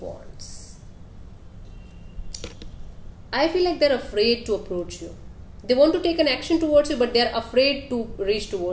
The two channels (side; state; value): both; identical; correlation 1.00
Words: Wands. I feel like they're afraid to approach you. They want to take an action towards you, but they're afraid to reach